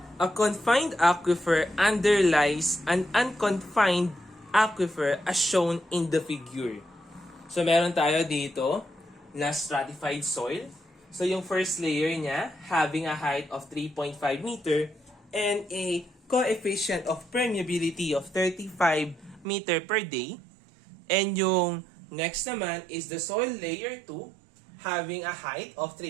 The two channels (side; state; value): left; drops out; at 19.5 s